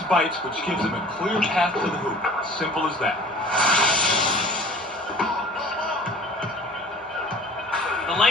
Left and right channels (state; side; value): normal; both; correlation 0.46